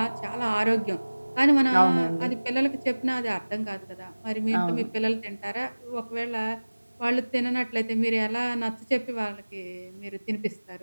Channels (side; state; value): both; inverted; correlation -1.00